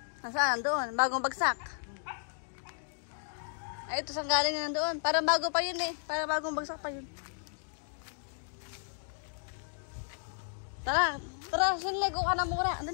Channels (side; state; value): right; silent; digital silence